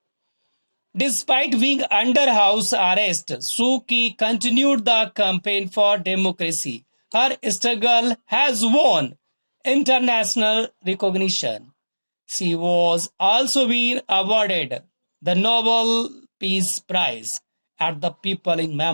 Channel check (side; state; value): both; inverted; correlation -1.00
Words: Despite being under house arrest, Suu Kyi continued the campaign for democracy. Her struggle has won international recognition. She was also been awarded the Nobel Peace Prize, and the people in